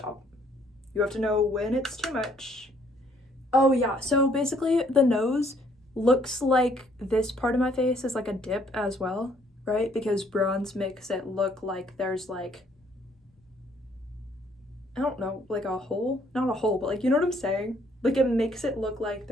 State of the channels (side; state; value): both; normal; correlation 0.65